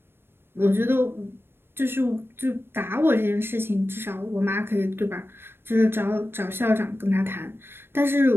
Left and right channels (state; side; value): late; left; 0.11 ms